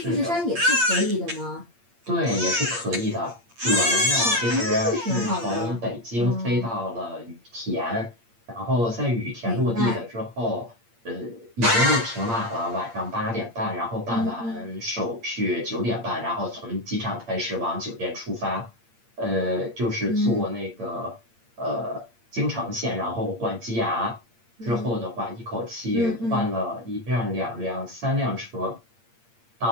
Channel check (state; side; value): late; left; 8.7 ms